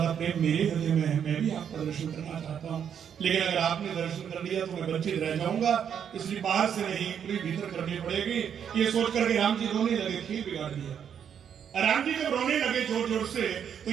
प्रेम मेरे हृदय में है। मैं भी आपका दर्शन करना चाहता हूँ, लेकिन अगर आपने दर्शन कर लिया तो मैं वंचित रह जाऊंगा, इसलिए बाहर से नहीं पूरी भीतर करनी पड़ेगी। ये सोच करके राम जी रोने लगे, खेल बिगाड़ दिया। राम जी जब रोने लगे जोर जोर से तो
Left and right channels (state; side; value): quieter; left; 8.3 dB